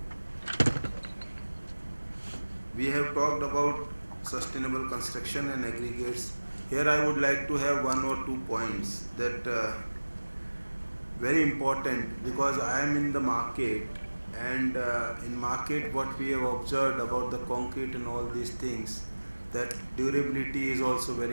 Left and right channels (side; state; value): both; inverted; correlation -1.00